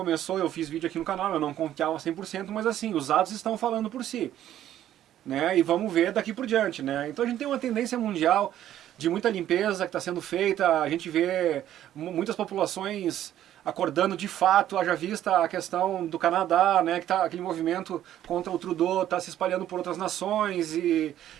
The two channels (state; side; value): quieter; left; 11.9 dB